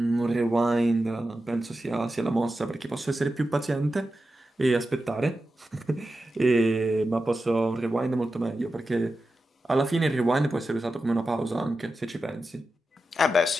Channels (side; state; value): both; normal; correlation 0.91